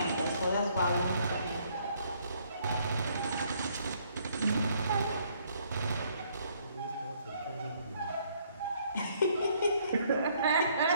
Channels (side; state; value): both; inverted; correlation -0.66